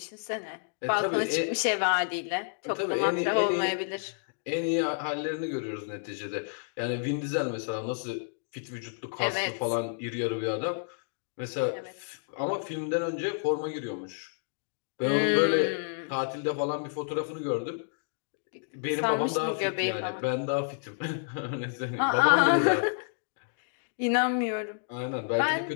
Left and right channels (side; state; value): right; silent; digital silence